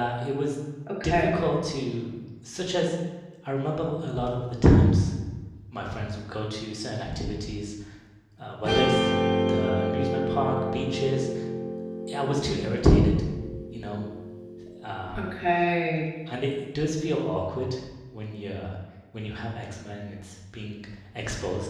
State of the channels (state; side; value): identical; both; correlation 1.00